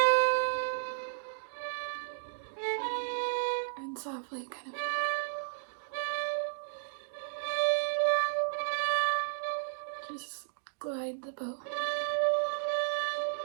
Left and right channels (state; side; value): silent; left; digital silence